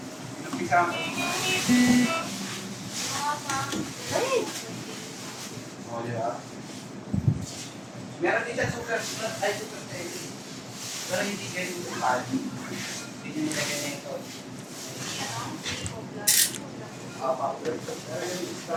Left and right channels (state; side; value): identical; both; correlation 1.00